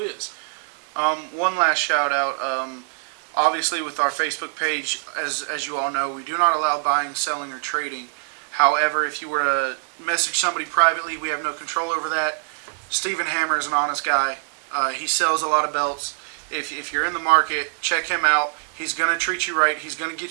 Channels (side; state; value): left; silent; digital silence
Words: is. One last shout out. Obviously, with our Facebook page, as you all know, we do not allow buying, selling, or trading. However, if you were to message somebody privately, we have no control over that. Stephen Hammer is an honest guy. He sells a lot of belts. If you're in the market, check him out. He's going to treat you right. He's going to